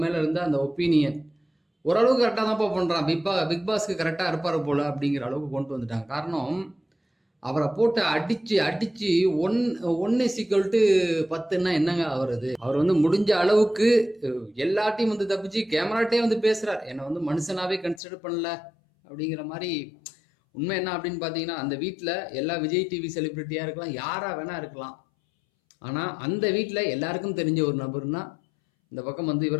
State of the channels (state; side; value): drops out; right; at 18.0 s